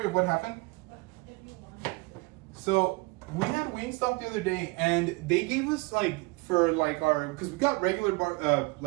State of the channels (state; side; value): quieter; left; 25.5 dB